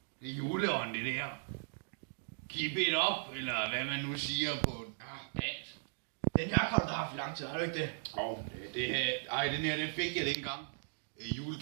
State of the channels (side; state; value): left; silent; digital silence